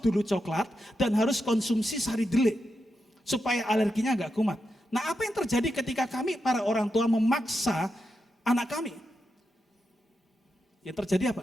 dulu coklat dan harus konsumsi sari deli supaya alerginya gak kumat. Nah apa yang terjadi ketika kami para orang tua memaksa anak kami? Yang terjadi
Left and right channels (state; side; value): normal; both; correlation 0.86